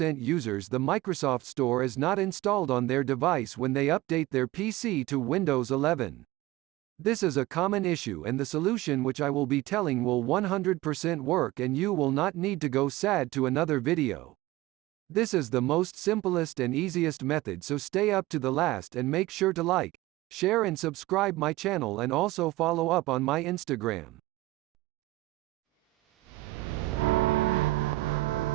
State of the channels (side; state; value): left; quieter; 18.3 dB